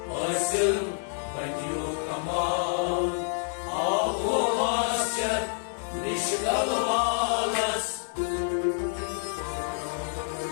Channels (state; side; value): silent; right; 59 dB below the other